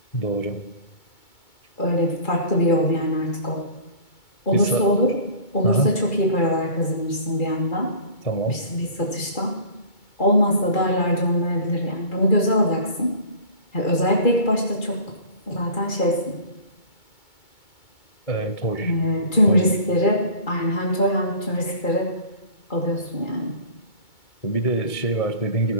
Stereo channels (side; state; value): right; late; 2.2 ms